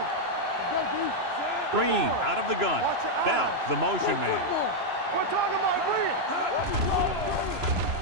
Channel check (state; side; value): late; left; 3.0 ms